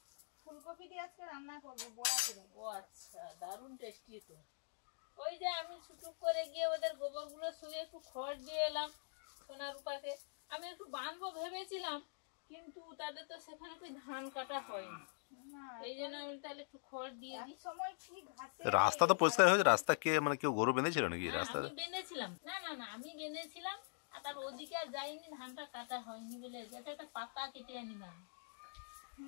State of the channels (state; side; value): silent; right; digital silence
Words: ফুলকপি দিয়ে আজকে রান্না করবো বড়া করে। ও আচ্ছা, দারুণ টেস্টি তো। ওই যে আমি ছুটুক করে গিয়ে ওদের গোবরগুলো শুয়ে একটু খড় দিয়ে এলাম সোনা রূপাকে। আমি একটু বাঁধবো ভেবেছিলাম, কিন্তু তাদের তো সেখানে કોઈ ধান কাটা হয়নি, এই জন্য আমি তাহলে একটু খড় দিয়ে দিই। রাস্তা তো পরিষ্কার হয়েছে। রাস্তা কে মানে কেউ গরু বেঁধেছিল নাকি রাস্তা? আমি বেঁধেছিলাম, না না না আমি বেঁধেছিলাম, আর তার ওদিকে আর যাইনি, ধানটা কাটা হয়নি বলে যেটা একটা পাতা কেটে আনিলাম।